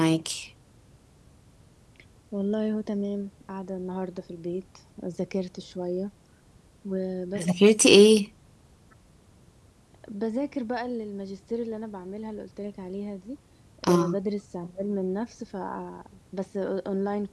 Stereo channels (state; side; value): identical; both; correlation 1.00